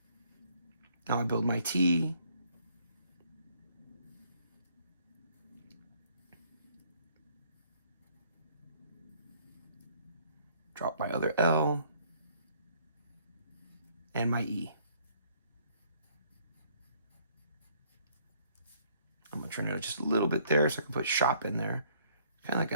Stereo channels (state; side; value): inverted; both; correlation -0.63